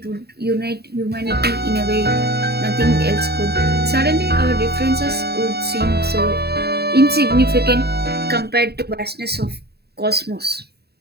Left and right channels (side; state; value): left; late; 0.47 ms